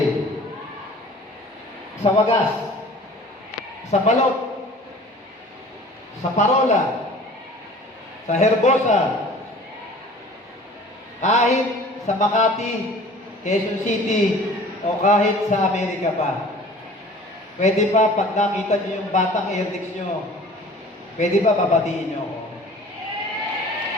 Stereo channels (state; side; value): normal; both; correlation 0.46